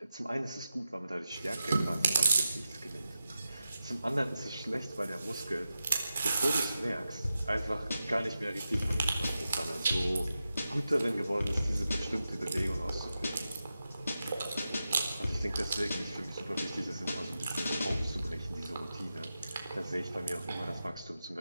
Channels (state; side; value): inverted; both; correlation -0.91